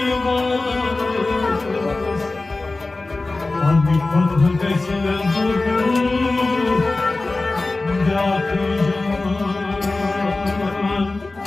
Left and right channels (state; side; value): quieter; right; 3.3 dB